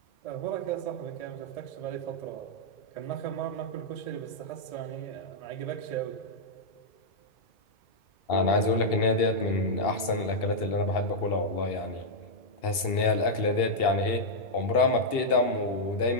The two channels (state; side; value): late; right; 2.7 ms